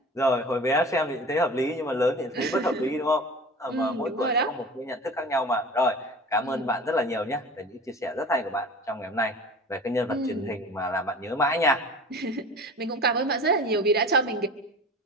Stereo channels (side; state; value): both; normal; correlation 0.38